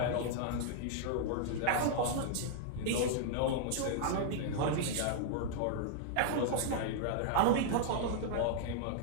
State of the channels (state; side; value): different; both; correlation -0.01